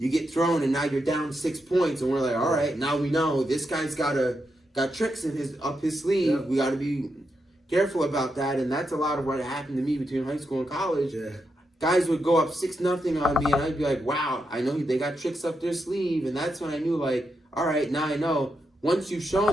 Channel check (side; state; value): both; normal; correlation 0.84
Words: thrown, and now you're down 6 points, and we're like, all right, now we know this guy's got tricks up his sleeve. Yeah. We got to be careful about that, and that's a lot of what happened to me between high school and college. Yeah. Guys would go up 6-0 on me, and I'd be like, wow, I know they got tricks up their sleeve, and that's when I knew, like, all right, now I know. Once you've